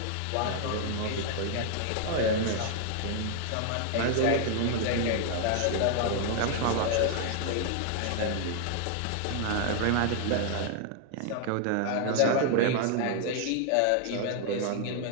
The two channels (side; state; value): both; different; correlation 0.00